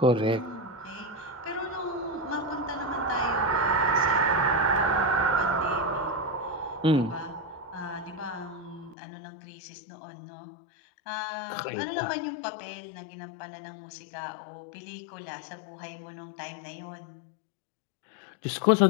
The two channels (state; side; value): drops out; right; at 9.0 s